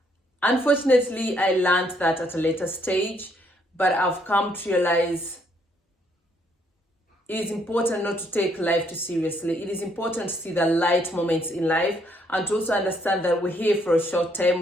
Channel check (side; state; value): both; normal; correlation 0.70